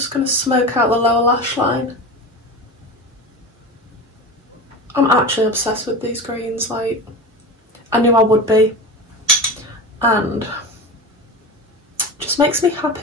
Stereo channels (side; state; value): both; normal; correlation 0.28